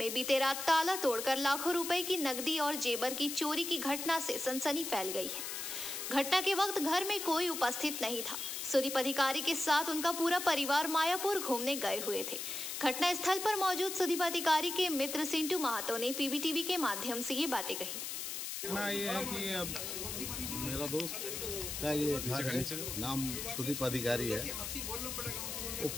बीते रात ताला तोड़कर लाखों रुपए की नकदी और जेवर की चोरी की घटना से सनसनी फैल गई है। घटना के वक्त घर में कोई उपस्थित नहीं था। सुदीप अधिकारी के साथ उनका पूरा परिवार मायापुर घूमने गए हुए थे। घटना स्थल पर मौजूद सुदीप अधिकारी के मित्र सिंटू महातो ने पीबीटीवी के माध्यम से ये बातें कही। ये है कि अब मेरा दोस्त का ये घर है, नाम सुदीप अधिकारी है। वो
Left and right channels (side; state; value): left; noise; hiss, 5 dB below the sound